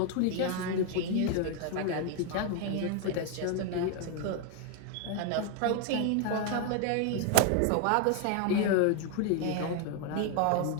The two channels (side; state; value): both; different; correlation 0.01